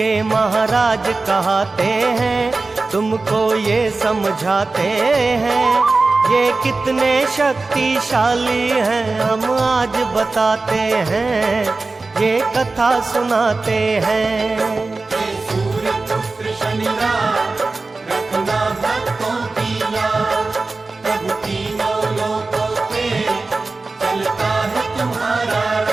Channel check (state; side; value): quieter; left; 3.6 dB